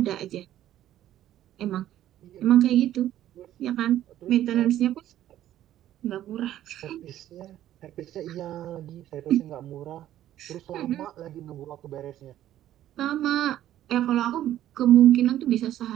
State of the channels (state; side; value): quieter; left; 12.6 dB